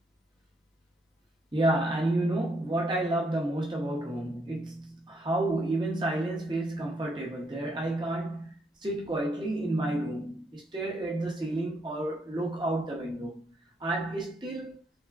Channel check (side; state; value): both; normal; correlation 0.74